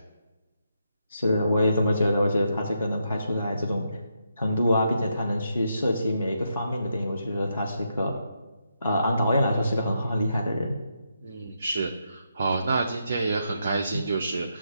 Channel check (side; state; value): both; inverted; correlation -0.81